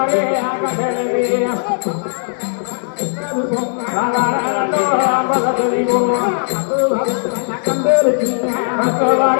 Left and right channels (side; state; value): right; silent; digital silence